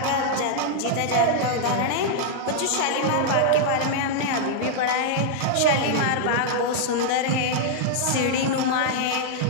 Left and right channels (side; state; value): both; different; correlation -0.01